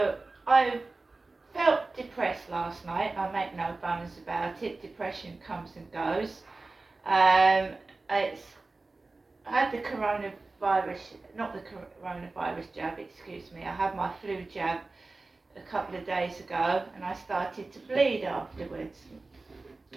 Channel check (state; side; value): quieter; left; 3.4 dB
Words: I felt depressed last night. I make no bones about it. Depression comes and goes. I had the coronavirus, not the coronavirus jab, excuse me. I had my flu jab a couple of days ago and I started to bleed afterwards.